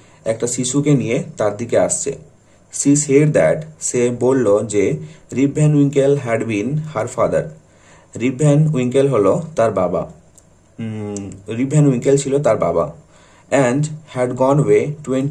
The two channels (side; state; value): both; identical; correlation 1.00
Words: একটা শিশুকে নিয়ে তার দিকে আসছে। সি সেড দ্যাট, সে বলল যে Rip Van Winkle had been her father, Rip Van Winkle হলো তার বাবা, রিপ ভ্যান উইঙ্কেল ছিল তার বাবা। And had gone way